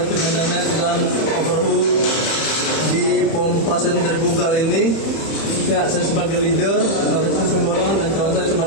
maintenance dan overhaul di pompa sentrifugal ini. Ya, saya sebagai leader, Taufik Sumborong, dan kawan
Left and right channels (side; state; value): right; late; 31 ms